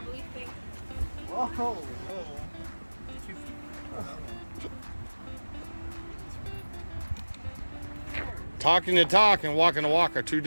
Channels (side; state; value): both; inverted; correlation -1.00